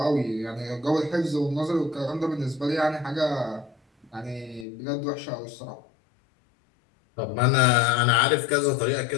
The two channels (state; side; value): drops out; right; at 4.7 s